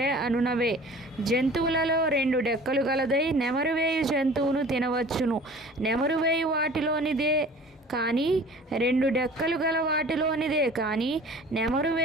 అనునవే. జంతువులలో 2 డెక్కలు గలదై నెమరువేయు జంతువును తినవచ్చును. నెమరువేయు వాటిలోనిదే కానీ 2 డెక్కలు గల వాటిలోనిదే కానీ నెమరు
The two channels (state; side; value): normal; both; correlation 0.45